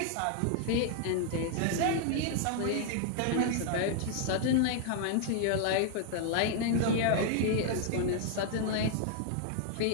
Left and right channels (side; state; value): both; different; correlation 0.00